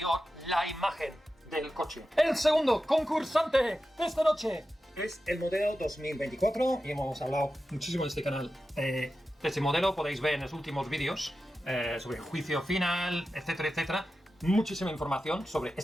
la imagen del coche. El segundo concursante de esta noche es el modelo 2024 y hemos hablado muchísimo en este canal de este modelo. Podéis ver en los últimos vídeos sobre el juicio final, etcétera, etcétera. Muchísima información sobre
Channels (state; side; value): normal; both; correlation 0.92